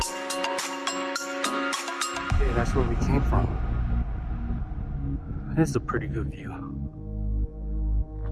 That's where we came from. This is a pretty good view.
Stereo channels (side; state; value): both; identical; correlation 1.00